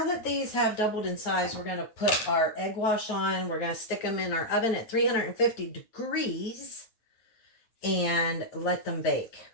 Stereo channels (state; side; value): late; right; 9.5 ms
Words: that these have doubled in size, we're going to put our egg wash on. We're going to stick them in our oven at 350 degrees and let them bake.